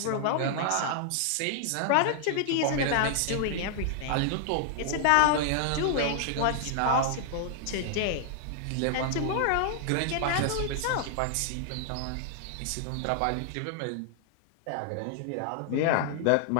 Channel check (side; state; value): both; different; correlation 0.00